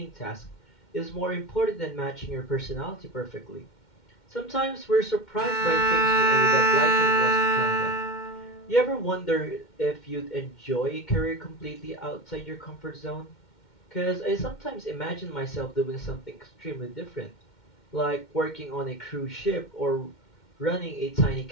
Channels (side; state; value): right; late; 2.1 ms